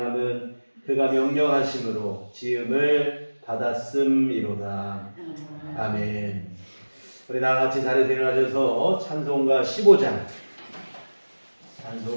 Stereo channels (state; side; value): inverted; both; correlation -1.00